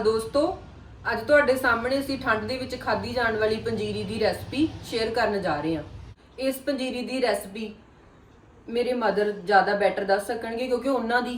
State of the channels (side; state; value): both; identical; correlation 1.00